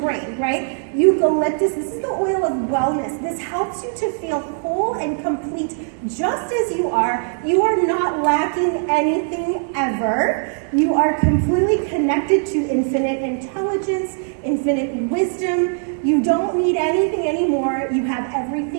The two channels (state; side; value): silent; left; 55 dB below the other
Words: right? Eucalyptus, this is the oil of wellness. This helps you to feel whole and complete just as you are. You are not lacking anything ever. You are completely connected to infinite intelligence, infinite wisdom. You don't need anything anymore. You have